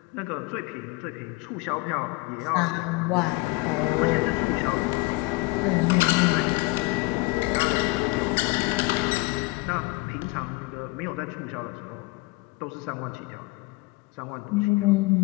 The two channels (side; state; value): right; quieter; 23.4 dB